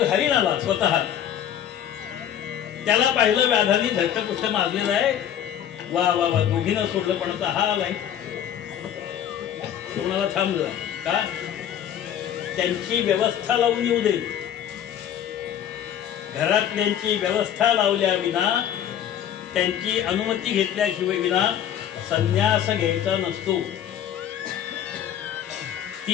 हरिण आला स्वतः. त्याला पाहिलं व्याधाने धट्टपुष्ट मारलेलं आहे. वा वा वा, दोघीनं सोडलं, पण आता हा आलाय. कोणाला थांब जरा, का त्यांची व्यवस्था लावून येऊ दे. घरातल्यांची व्यवस्था लावल्या विना, त्यांची अनुमती घेतल्याशिवाय विना संन्यास घ्यायचा नसतो.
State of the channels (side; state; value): right; quieter; 10.0 dB